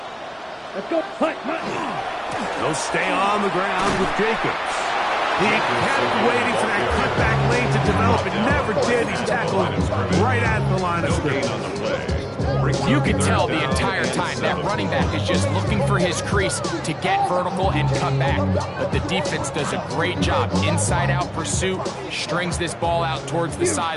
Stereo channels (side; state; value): both; identical; correlation 1.00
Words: Let's go. They'll stay on the ground with Jacobs. He kept waiting for that cutback lane to develop. It never did. He's tackled right at the line of scrimmage. You can tell the entire time that running back is just looking for his crease to get vertical and cut back. But the defense does a great job. Inside-out pursuit, strings this ball out towards the